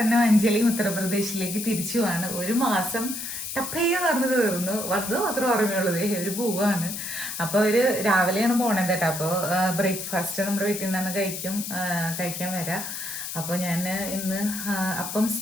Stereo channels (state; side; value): noise; left; hiss, 6 dB below the sound